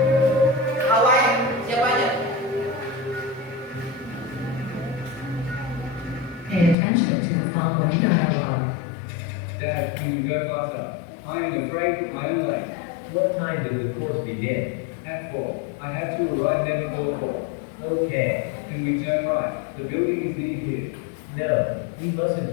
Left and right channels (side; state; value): right; drops out; at 6.8 s